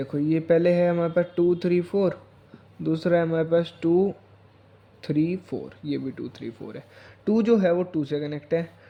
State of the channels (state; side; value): identical; both; correlation 1.00